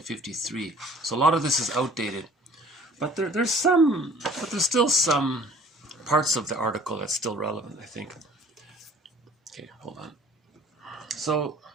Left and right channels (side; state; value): both; normal; correlation 0.51